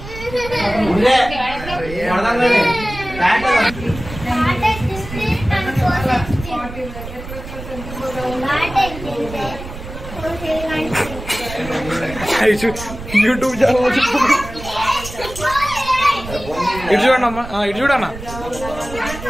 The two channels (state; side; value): noise; right; rumble, 12 dB below the sound